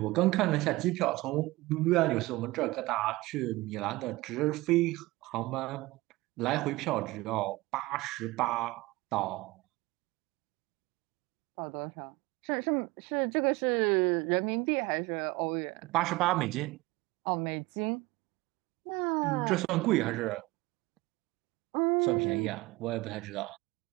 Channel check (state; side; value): quieter; left; 20.5 dB